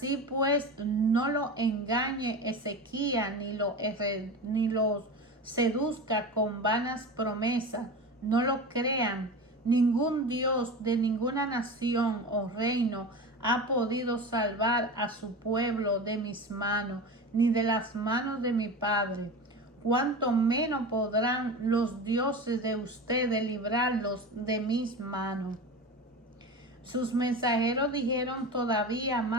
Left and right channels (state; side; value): normal; both; correlation 0.28